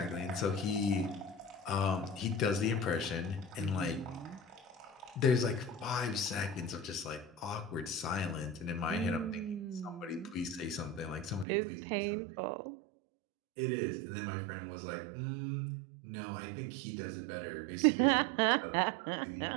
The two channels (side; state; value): left; drops out; at 11.5 s